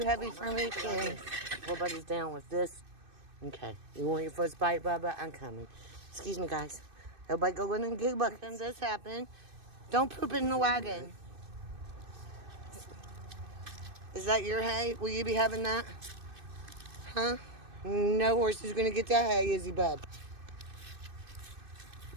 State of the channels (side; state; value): left; late; 2.6 ms